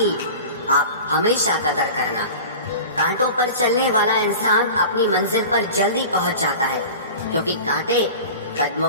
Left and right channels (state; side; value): inverted; both; correlation -0.36